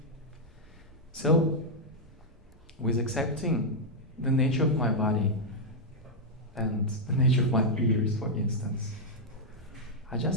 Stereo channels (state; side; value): normal; both; correlation -0.03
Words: So, with accepting the nature of my body and the nature of my ears, for instance, I